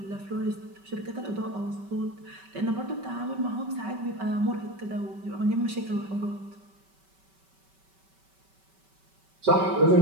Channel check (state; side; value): late; left; 5.2 ms